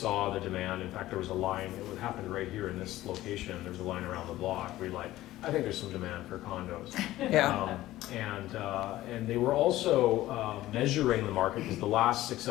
the demand, in fact, there was a line, it happened right here in this location, there was a line around the block. We like, I think there's some demand for condos. Yeah. And they were also measuring the market, because the last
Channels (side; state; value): right; quieter; 15.6 dB